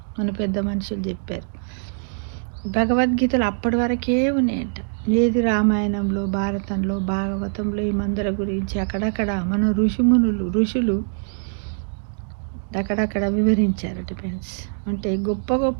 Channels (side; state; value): left; silent; digital silence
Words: మన పెద్ద మనుషులు చెప్పారు. భగవద్గీతలు అప్పటి వరకే ఉన్నాయంట. ఏది రామాయణంలో, భారతంలో, భాగవతంలో ఈ మందుల గురించి అక్కడక్కడ మన ఋషులు అక్కడక్కడ వివరించారట ఫ్రెండ్స్. అంటే